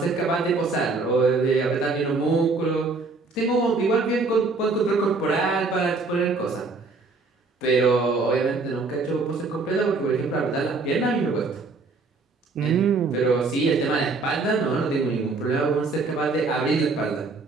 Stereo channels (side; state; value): left; quieter; 3.8 dB